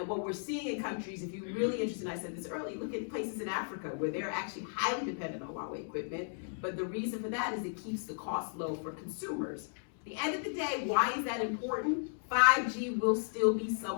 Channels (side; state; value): right; silent; digital silence